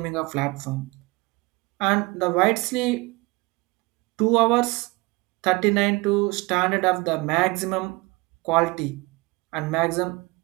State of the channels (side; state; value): left; quieter; 24.4 dB